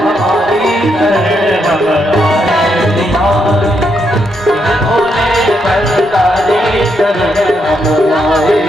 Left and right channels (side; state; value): both; normal; correlation 0.79